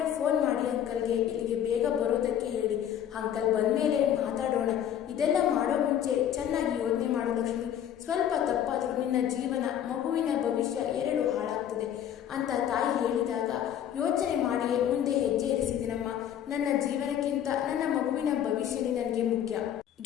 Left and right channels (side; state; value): right; quieter; 10.1 dB